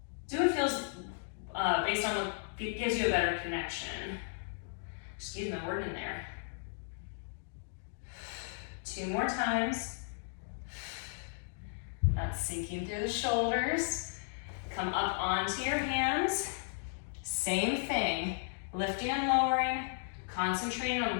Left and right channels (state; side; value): silent; right; digital silence